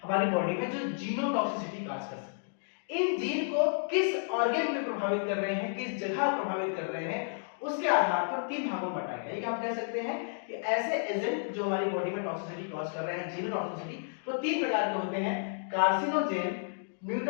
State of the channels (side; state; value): right; silent; digital silence